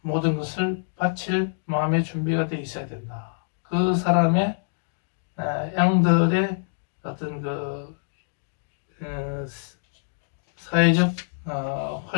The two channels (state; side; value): silent; right; digital silence